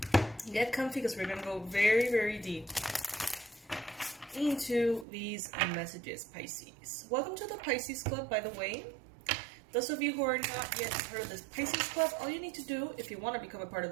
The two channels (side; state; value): left; drops out; at 5.1 s